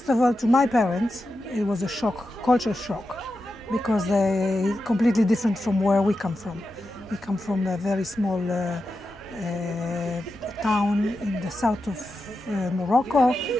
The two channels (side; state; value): both; normal; correlation 0.90